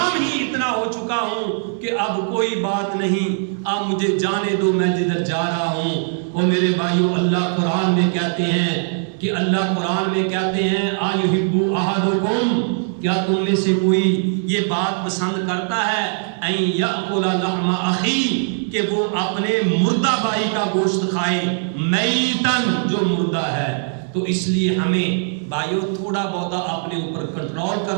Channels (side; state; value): left; silent; digital silence